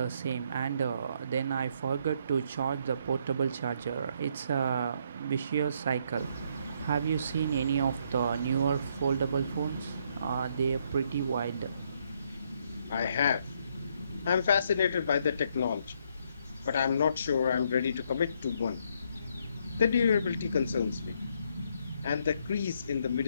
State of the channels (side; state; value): both; inverted; correlation -0.71